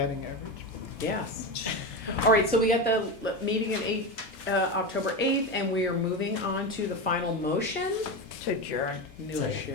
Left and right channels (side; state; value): both; normal; correlation 0.19